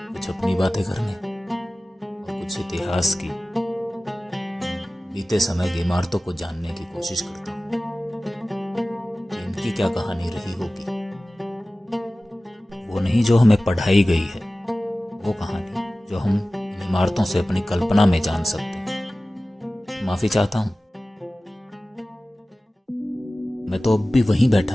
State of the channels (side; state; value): both; normal; correlation 0.97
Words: अपनी बातें करने और कुछ इतिहास की, बीते समय की इमारतों को जानने की कोशिश करता हूँ कि इनकी क्या कहानी रही होगी। वो नहीं जो हमें पढ़ाई गई है, वो कहानी जो हम इन इमारतों से अपनी कल्पना में जान सकते हैं। माफी चाहता हूँ, मैं तो अब भी वहीं